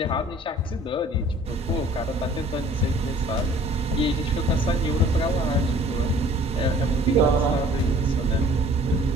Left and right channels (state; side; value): normal; both; correlation 0.52